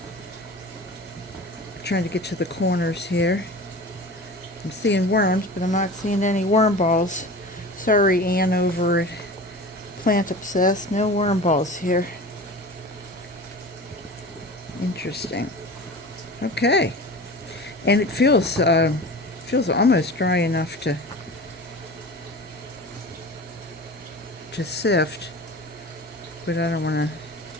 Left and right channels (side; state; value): both; normal; correlation 0.35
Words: Trying to get to the corners here. I'm seeing worms, but I'm not seeing any worm balls. Sorry, Ann over at Plant Obsessed. No worm balls here. Interesting. Okay. And it feels almost dry enough to sift, but I don't want